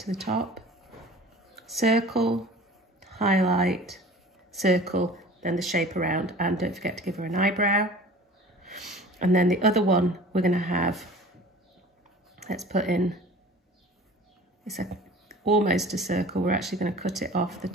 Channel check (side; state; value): both; normal; correlation 0.43